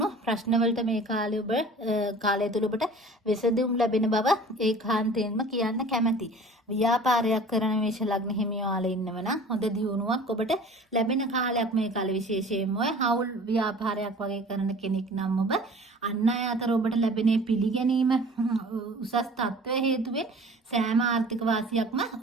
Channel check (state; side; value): normal; both; correlation 0.44